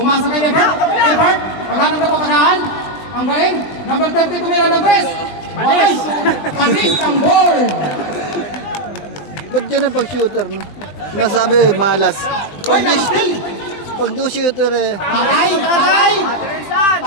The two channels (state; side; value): late; right; 20 ms